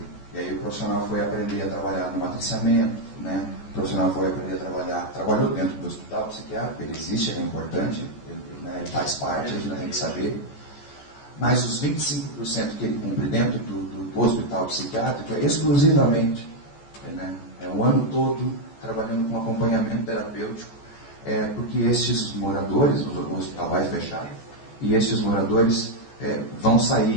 E aí o profissional foi aprender a trabalhar no matriciamento, né? O profissional foi aprender a trabalhou dentro do hospital psiquiátrico, ele existe, ele é importante, ele faz parte, a gente tem que saber. Mas os 25% que ele cumpre dentro do hospital psiquiátrico é exclusivamente, né? É o ano todo trabalhando com acompanhamento terapêutico, porque estes moradores, o hospital vai fechar, e estes moradores vão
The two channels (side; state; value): right; late; 14 ms